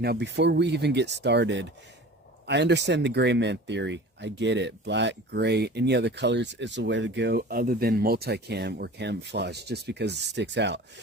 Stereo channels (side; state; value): both; normal; correlation 0.39